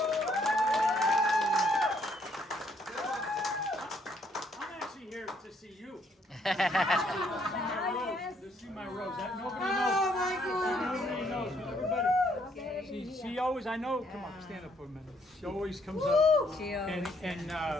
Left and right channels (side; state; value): both; normal; correlation 0.69